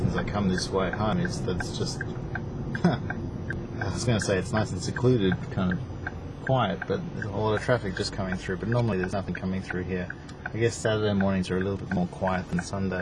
I come this way home is that it's just I was going to say it's nice and secluded, kind of quiet, but there's a lot of traffic just coming through, but normally there's nothing coming through here. I guess Saturday mornings are a little bit more quiet than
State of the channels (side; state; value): both; identical; correlation 1.00